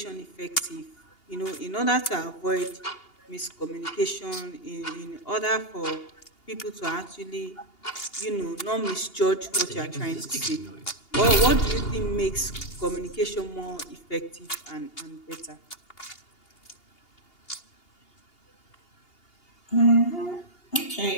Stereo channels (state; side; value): late; right; 2.8 ms